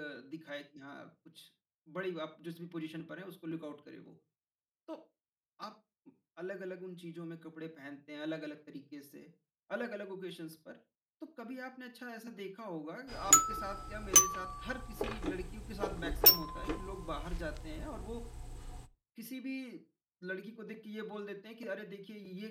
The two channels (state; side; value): identical; both; correlation 1.00